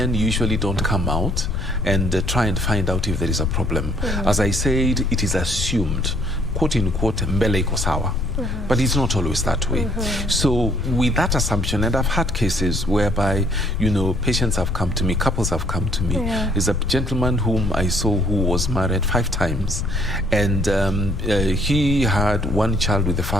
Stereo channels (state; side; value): noise; left; rumble, 3 dB below the sound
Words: usually don't come out and try and find out if there is a problem. As I said, it is assumed, quote unquote, mbele iko sawa. But it's not always that way. So with that assumption, and I've had cases whereby, you know, patients have come to me, couples have come to me. There's a gentleman whom I saw who was married 5 times. And he had 1 child with the